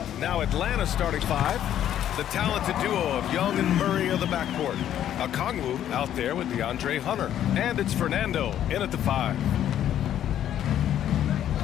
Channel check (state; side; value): quieter; right; 10.9 dB